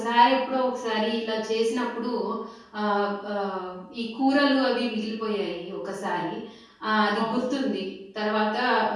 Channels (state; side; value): identical; both; correlation 1.00